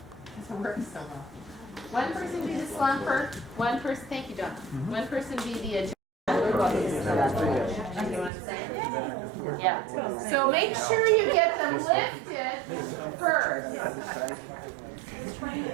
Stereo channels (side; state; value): left; drops out; at 8.3 s